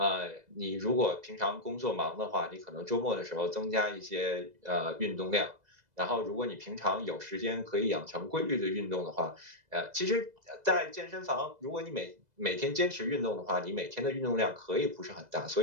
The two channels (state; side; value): late; left; 2.0 ms